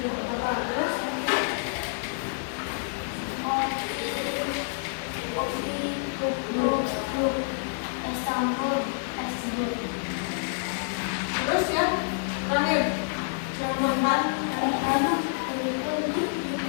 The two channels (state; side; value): silent; right; digital silence